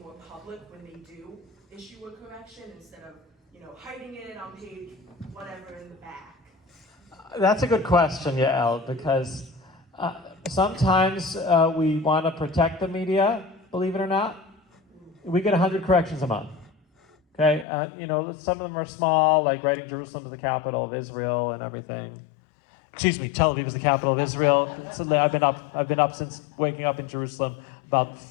public when they do issue a correction instead of, hiding it on page whatever in the back? That's a good question, Yael, because sometimes we want to protect the media, believe it or not. We get 100 corrections a month. Okay, some of them are small, like writing Jerusalem is the capital of Israel and everything. Excuse me, Tel Aviv is the capital of Israel. So I've been up since waking up in Jerusalem about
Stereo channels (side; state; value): right; drops out; at 17.7 s